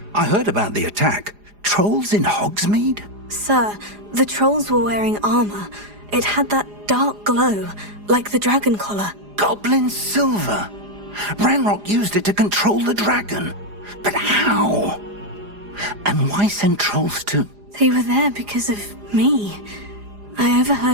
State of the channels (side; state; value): left; late; 4.9 ms